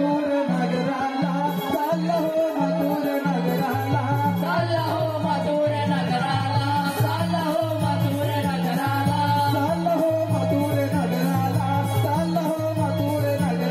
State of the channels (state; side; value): identical; both; correlation 1.00